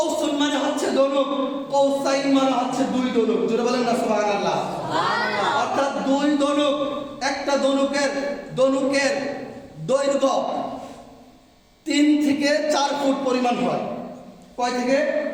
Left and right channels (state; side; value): identical; both; correlation 1.00